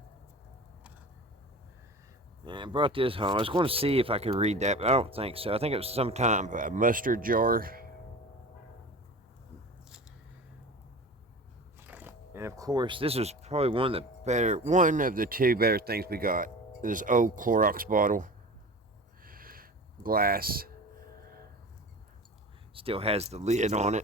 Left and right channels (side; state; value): both; normal; correlation 0.35